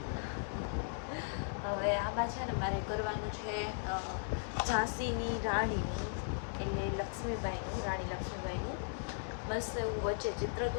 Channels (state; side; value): silent; right; digital silence